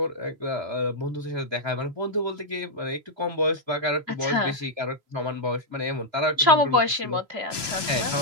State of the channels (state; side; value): late; left; 3.0 ms